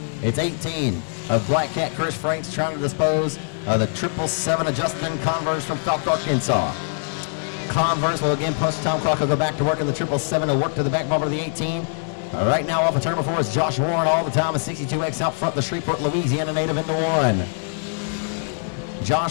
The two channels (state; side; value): silent; right; digital silence